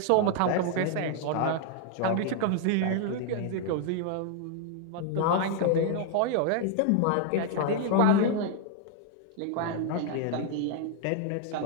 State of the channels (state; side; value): different; both; correlation 0.00